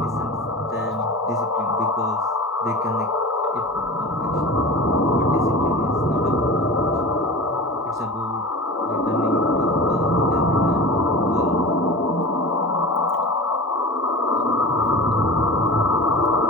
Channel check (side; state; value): both; normal; correlation 0.34